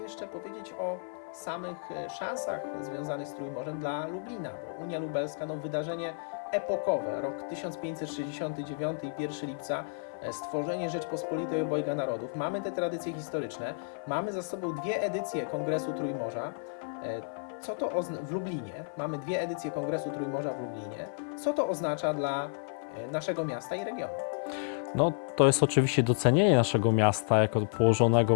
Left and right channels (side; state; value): right; silent; 57 dB below the other